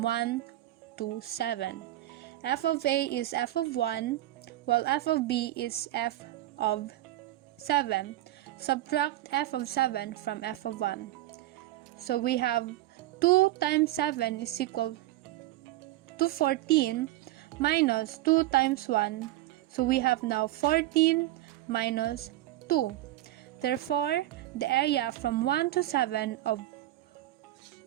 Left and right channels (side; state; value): left; quieter; 15.5 dB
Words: 1 to 7. F of A is f of 1, while f of B is f of 7. Subtract f of 7 from f of 1. So we have 2 times 7 is equal to 14 minus 2 times 1. So we have now 14 minus 2. Therefore, the area from 1 to 7 of